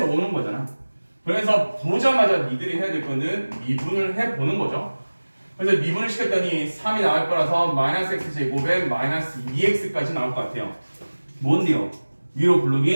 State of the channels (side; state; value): both; inverted; correlation -1.00